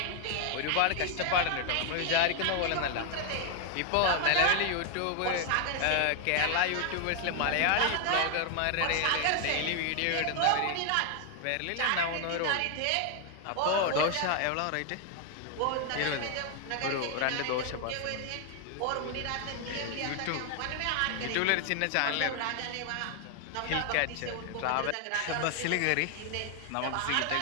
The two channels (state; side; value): different; both; correlation 0.00